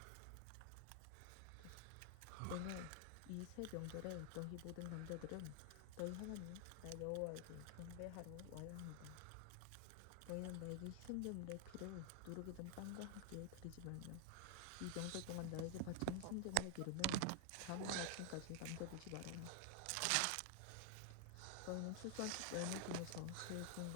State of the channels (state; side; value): different; both; correlation 0.00